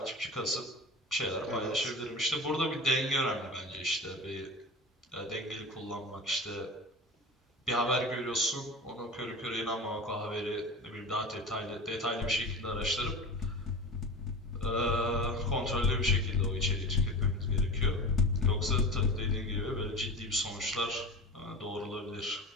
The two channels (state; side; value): normal; both; correlation 0.32